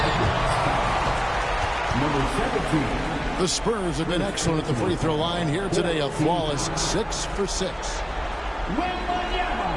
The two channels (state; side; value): identical; both; correlation 1.00